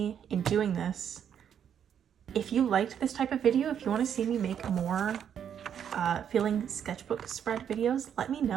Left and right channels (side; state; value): left; quieter; 8.7 dB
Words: in doing this. If you liked this type of video, if you want to see me make more filling sketchbook spread videos, let me